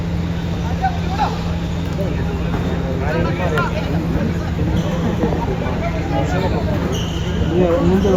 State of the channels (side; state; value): both; identical; correlation 1.00